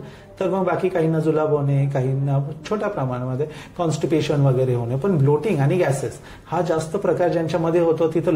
तर मग बाकी काहींना जुलाब होणे, काहींना छोट्या प्रमाणामध्ये कॉन्स्टिपेशन वगैरे होणे. पण ब्लोटिंग आणि गॅसेस हा जास्त प्रकार ज्यांच्यामध्ये होतो तिथं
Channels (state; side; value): identical; both; correlation 1.00